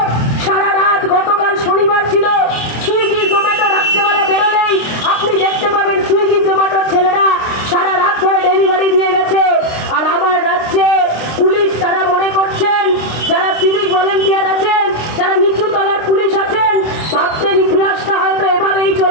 সারা রাত, গতকাল শনিবার ছিল, সুইগি জোম্যাটো রাত্রেবেলা বেরোলেই আপনি দেখতে পাবেন সুইগি জোম্যাটোর ছেলেরা সারা রাত ধরে ডেলিভারি দিয়ে গেছে। আর আমার রাজ্যে পুলিশ তারা মনে করছেন, যারা সিভিক ভলেন্টিয়ার আছেন, যারা নিচু তলার পুলিশ আছেন, ভাবছেন ইতিহাসটা হয়তো এভাবেই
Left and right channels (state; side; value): late; right; 26 ms